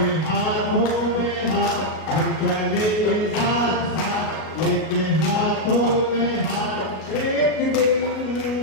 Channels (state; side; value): late; right; 38 ms